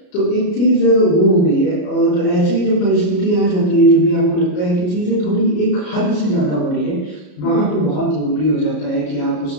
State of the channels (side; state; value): right; late; 33 ms